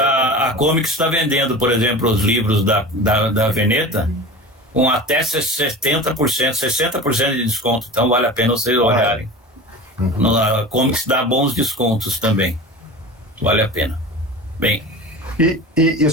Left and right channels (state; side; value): normal; both; correlation 0.33